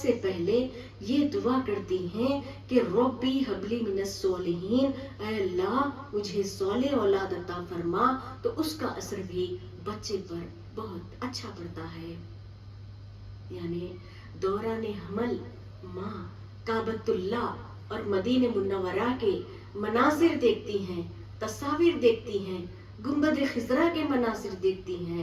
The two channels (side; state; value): both; identical; correlation 1.00